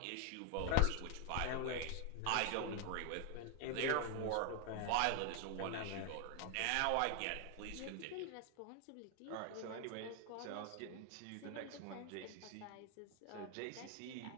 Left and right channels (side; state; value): both; different; correlation 0.00